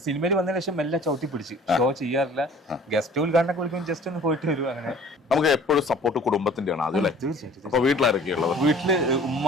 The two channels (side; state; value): both; normal; correlation 0.49